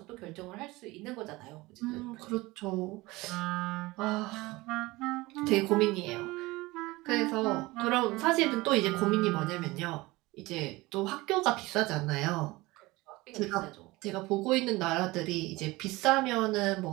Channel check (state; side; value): quieter; left; 21.0 dB